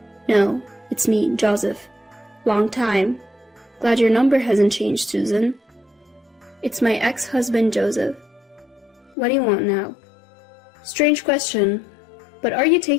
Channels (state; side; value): drops out; right; at 9.2 s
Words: "No, it's me, Joseph. Long time. Glad your number hasn't changed, Susan." "It's my ex-husband, Joseph. What do you want now?" "Strange question, but are you